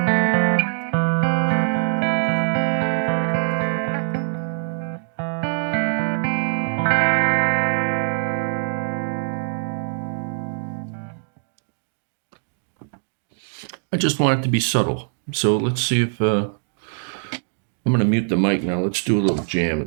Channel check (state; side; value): silent; left; digital silence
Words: I just want it to be subtle. So let's see if I'm going to mute the mic now. Let's do a little jam